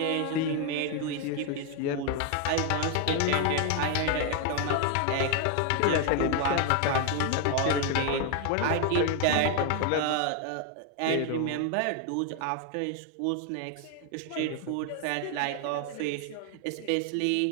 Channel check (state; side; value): different; both; correlation 0.01